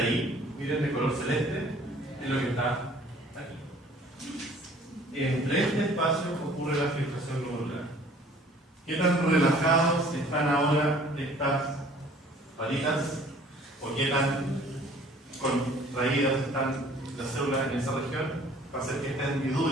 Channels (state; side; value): normal; both; correlation 0.53